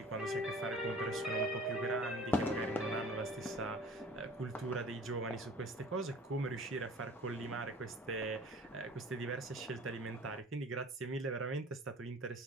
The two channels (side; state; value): both; normal; correlation 0.46